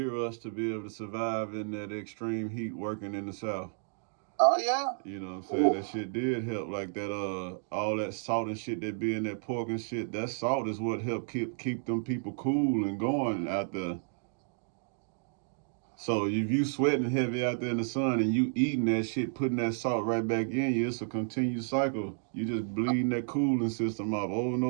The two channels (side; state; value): left; silent; digital silence